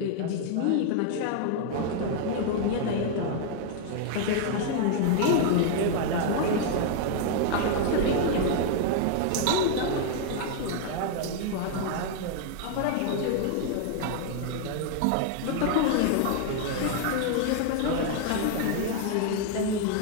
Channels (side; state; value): both; different; correlation 0.00